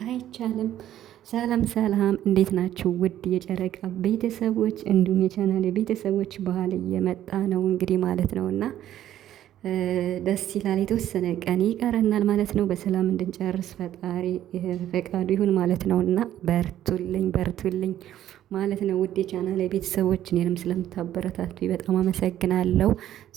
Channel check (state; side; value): quieter; left; 12.0 dB